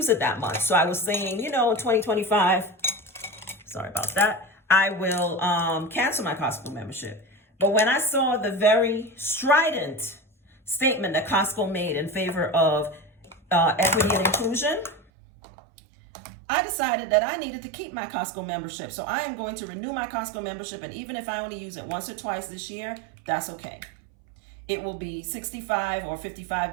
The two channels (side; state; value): left; drops out; at 15.0 s